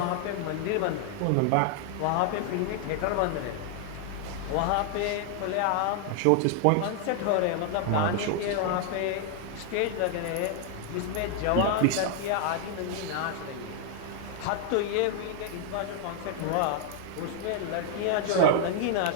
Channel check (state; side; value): different; both; correlation 0.00